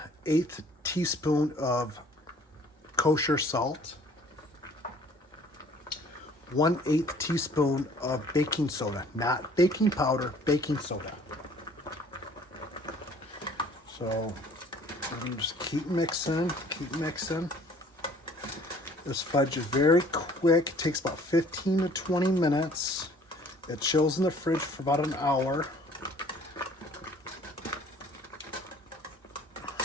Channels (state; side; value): normal; both; correlation 0.54